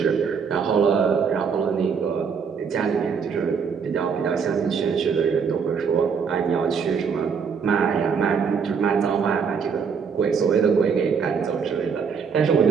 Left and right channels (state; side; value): quieter; left; 6.2 dB